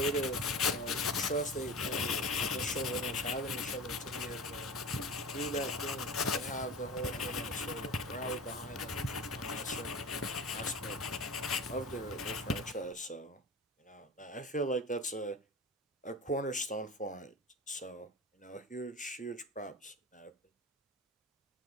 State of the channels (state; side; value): normal; both; correlation 0.32